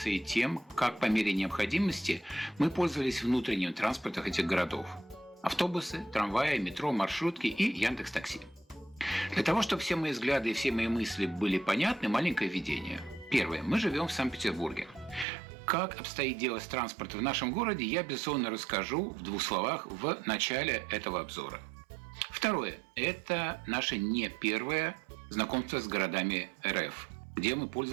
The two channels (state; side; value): drops out; left; at 15.2 s